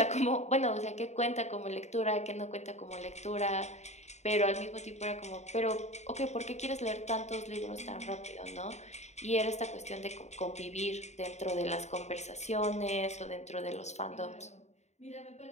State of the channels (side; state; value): right; late; 0.33 ms